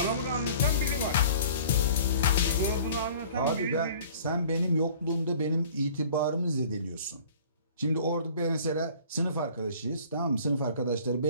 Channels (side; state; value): both; inverted; correlation -0.48